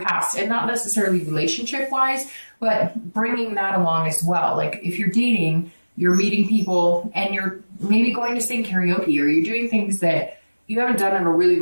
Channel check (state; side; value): inverted; both; correlation -1.00